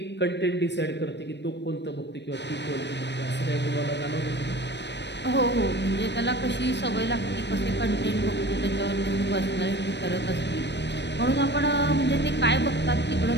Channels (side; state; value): right; late; 0.51 ms